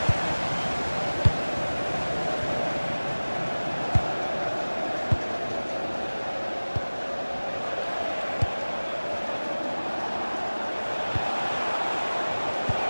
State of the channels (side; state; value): both; inverted; correlation -1.00